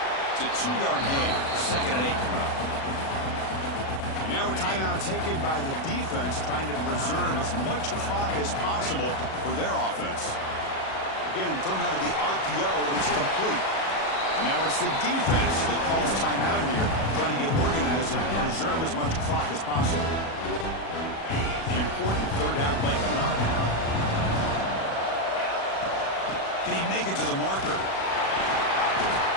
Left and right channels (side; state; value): right; late; 37 ms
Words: It's a 2-yard gain. 2nd and 8 coming up. And now a timeout taken by the defense, trying to preserve as much clock as possible for their offense. Again, thrown out of the RPO, and it's complete. And now it's the defense that calls timeout here, trying to get organized and preserve as much clock as possible. The important third down play coming up. Can he make it to the marker?